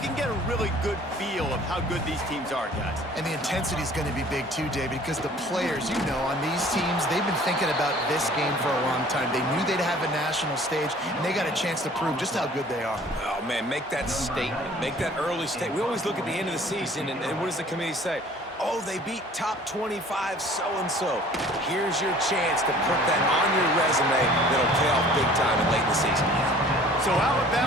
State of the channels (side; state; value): both; normal; correlation 0.51